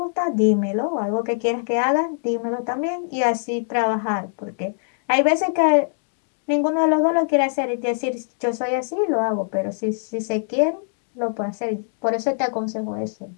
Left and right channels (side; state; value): right; silent; digital silence